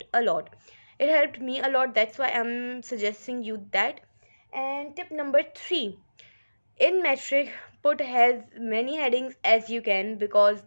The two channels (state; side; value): inverted; both; correlation -1.00